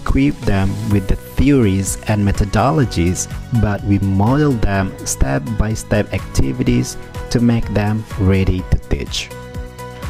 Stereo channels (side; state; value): both; identical; correlation 1.00